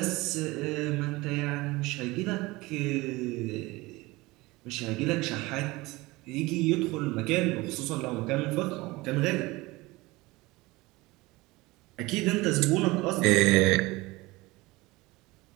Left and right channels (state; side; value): quieter; left; 21.4 dB